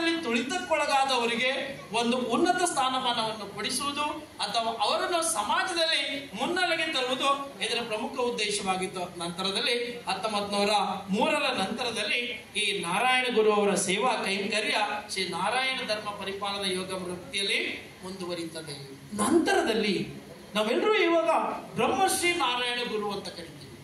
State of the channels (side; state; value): both; identical; correlation 1.00